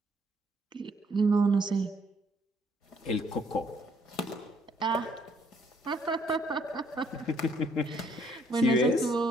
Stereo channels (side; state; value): both; normal; correlation 0.66